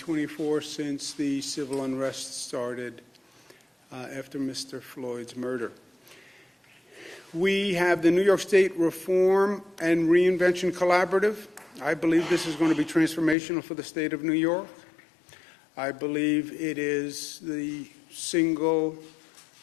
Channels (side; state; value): right; drops out; at 13.4 s